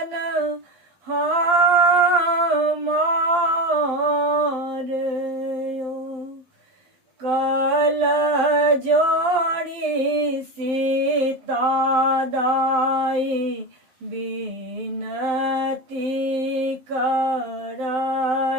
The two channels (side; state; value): left; late; 12 ms